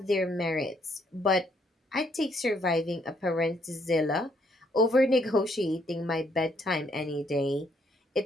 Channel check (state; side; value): normal; both; correlation 0.70